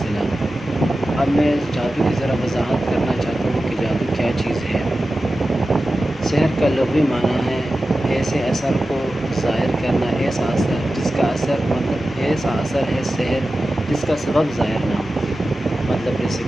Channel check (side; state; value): both; normal; correlation 0.94